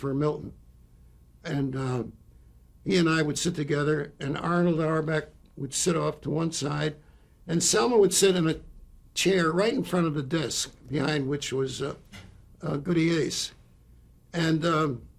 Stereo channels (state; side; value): identical; both; correlation 1.00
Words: Milton. And he and I would sit together, and Arnold Auerbach would sit off to one side, and Selma would sit in a chair right in front of the desk, behind which was Goody Ace. And